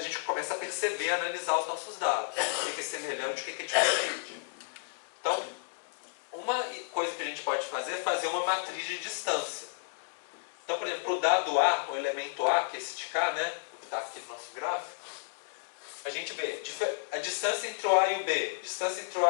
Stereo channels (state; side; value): silent; right; digital silence